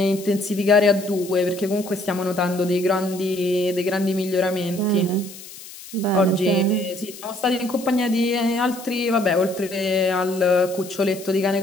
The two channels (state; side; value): noise; left; hiss, 16 dB below the sound